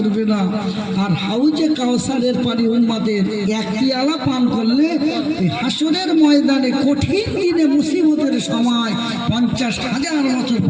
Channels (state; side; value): identical; both; correlation 1.00